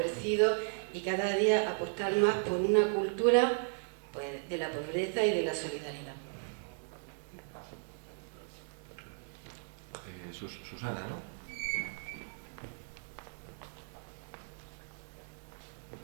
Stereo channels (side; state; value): left; silent; digital silence